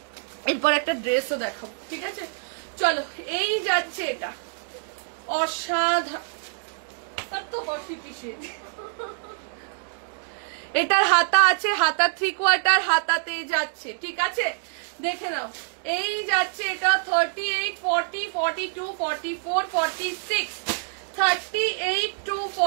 এরপর একটা ড্রেসও দেখাবো। ঠিক আছে, চলো এই যাচ্ছে এটা, অসাধারণ। এটার হাতা আছে, হাতা 3/4 হাতাতে যাচ্ছে। ঠিক আছে, দেখে নাও এই যাচ্ছে এটা 38 40 42 44 46। 38 to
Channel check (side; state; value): left; silent; digital silence